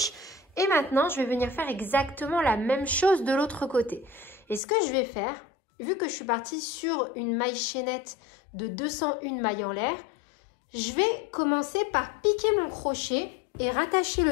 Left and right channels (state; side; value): drops out; right; at 4.6 s